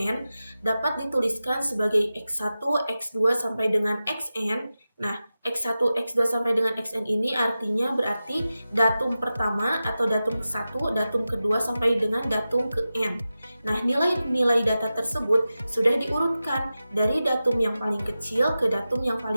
dapat dituliskan sebagai X1, X2 sampai dengan Xn. Nah, X1, X2 sampai dengan Xn ini artinya berarti datum pertama atau datum ke-1, datum kedua sampai dengan datum ke N. Nah, nilai-nilai data tersebut sudah diurutkan dari datum yang paling kecil ke datum yang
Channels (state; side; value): inverted; both; correlation -0.94